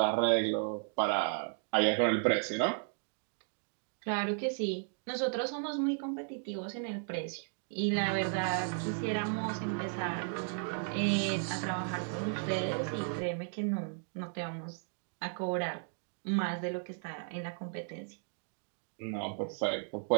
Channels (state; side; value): silent; left; 55 dB below the other